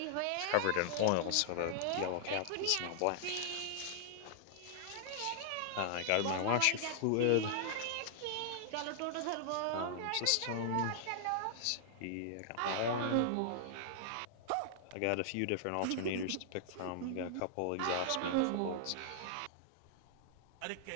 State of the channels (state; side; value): different; both; correlation -0.01